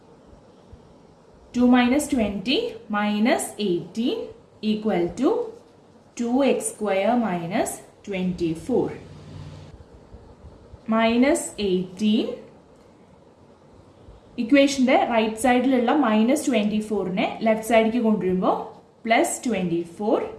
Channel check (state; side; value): identical; both; correlation 1.00